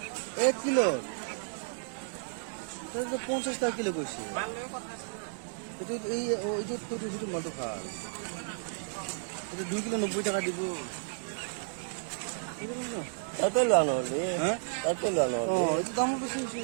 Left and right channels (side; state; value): left; silent; digital silence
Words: এক কিলো 50 টাকা কিলো কইছি মাল লগে কথা আছে না এটা এই ওই যে তো দুটো মাল তো খাল এটা 2 কিলো 90 টাকা দিব তাতে লানো হলে হ্যাঁ তাতে লানো ও এই দাম বেশি